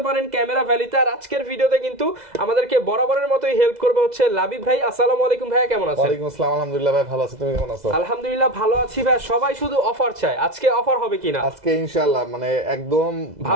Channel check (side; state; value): left; late; 2.0 ms